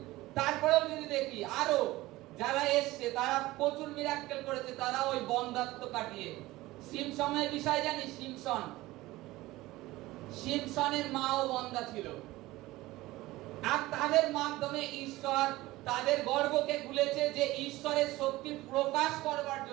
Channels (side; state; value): left; quieter; 18.4 dB